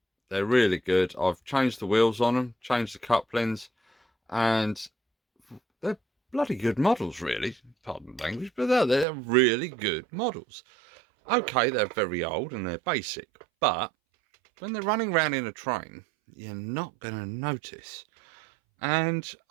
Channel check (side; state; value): left; drops out; at 9.1 s